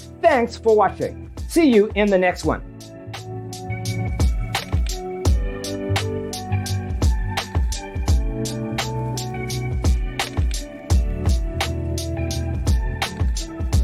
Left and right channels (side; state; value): both; identical; correlation 1.00